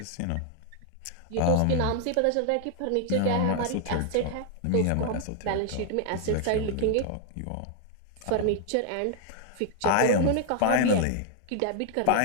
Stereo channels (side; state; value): both; different; correlation 0.00